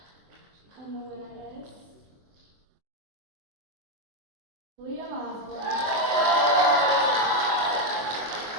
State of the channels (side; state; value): left; late; 23 ms